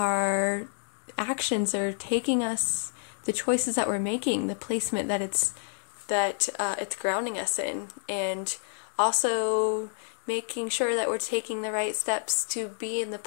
actions are taking us, the choices that we're making, the placement that it's grounding us in, and also making sure that we're taking the right steps to be in the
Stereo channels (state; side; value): silent; right; digital silence